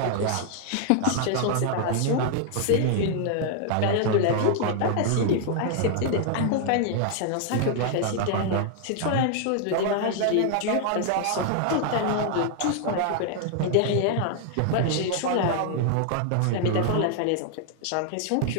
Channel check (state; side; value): different; both; correlation 0.00